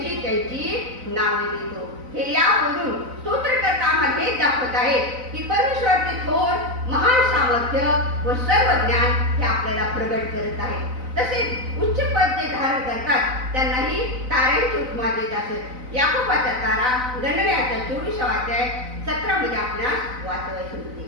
त्यांची नावे देतो. हे यावरून स्तोत्रकर्ता आम्हाला हेच दाखवत आहे की परमेश्वराचे थोर महान सामर्थ्य व सर्व ज्ञान हे आपल्याला प्रगट करत आहे. तसेच उच्च पद जे धारण करतात त्यांनाही ताऱ्यांची उपमा देत असत. याकोबाचा तारा गणनेचा 24वा अध्याय 17 मध्ये आपणास वाचवायचे होते.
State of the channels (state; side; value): late; left; 4.0 ms